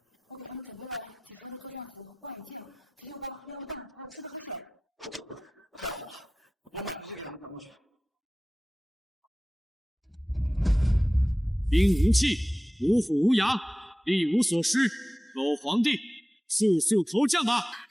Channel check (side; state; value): both; normal; correlation 0.96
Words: 兵无器，无虎无牙，力无所施。狗皇帝，速速投降吧！